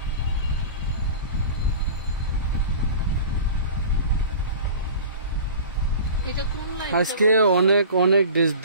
আজকে অনেক অনেক ড্রেস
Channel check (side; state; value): both; inverted; correlation -0.38